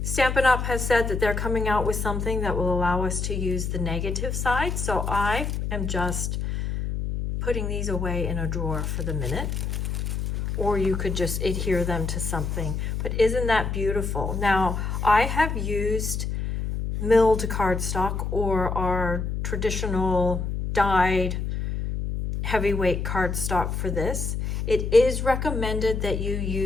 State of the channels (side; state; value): left; noise; hum, 2 dB below the sound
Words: Stampin' Up has said that they're coming out with something that will allow us to use the negative side. So I am just putting these away in a drawer for the minute. Or you could just adhere them to something. But isn't that beautiful? Now, I have used milled cardstock or our traditional dyed heavyweight cardstock for this. It is recommended that you